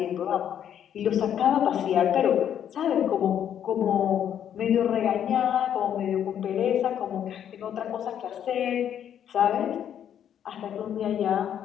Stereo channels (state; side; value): quieter; right; 9.6 dB